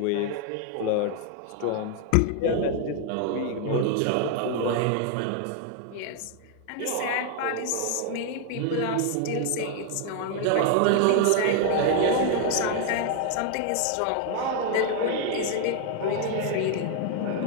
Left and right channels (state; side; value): different; both; correlation 0.00